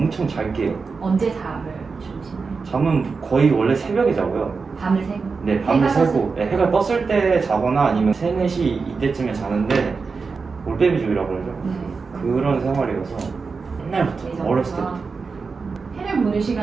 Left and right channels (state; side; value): quieter; left; 4.8 dB